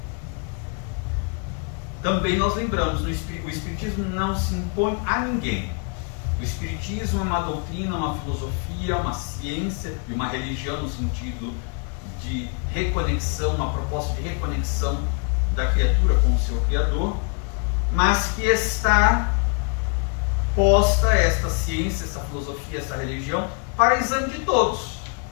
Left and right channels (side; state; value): right; quieter; 37.7 dB